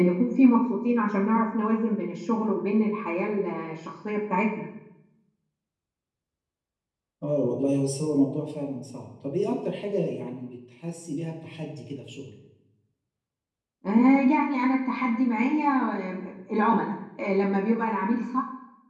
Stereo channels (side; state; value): both; identical; correlation 1.00